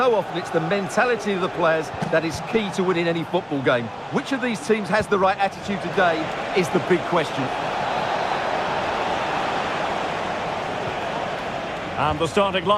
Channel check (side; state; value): both; identical; correlation 1.00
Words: often it's the mentality of the players that is key to winning any football game. Which of these teams has the right attitude today is the big question. And the starting